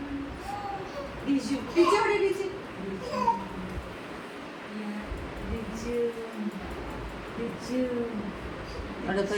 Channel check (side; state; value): both; identical; correlation 1.00